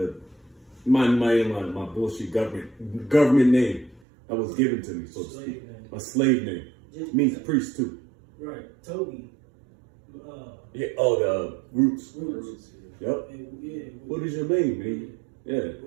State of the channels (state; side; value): drops out; left; at 4.0 s